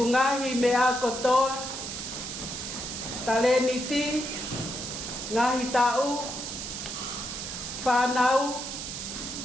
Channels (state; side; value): noise; right; hiss, 6 dB below the sound